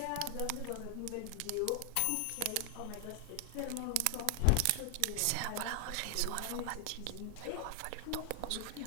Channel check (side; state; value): both; different; correlation 0.00